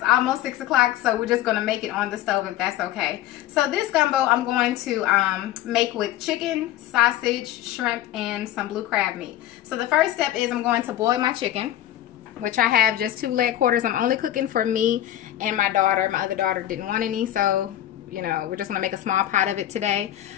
almost 6 o'clock, so we're just going to make it on the stove if that's okay. So this gumbo I'm going to make with chicken, sausage, shrimp, and some blue crab meat. So the first step is I'm going to boil my chicken, which I have just 2 leg quarters. I'm only cooking for me and my daughter. My other daughter didn't want any, so you know, we're just going to make a small pot of it today.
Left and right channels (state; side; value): quieter; right; 13.0 dB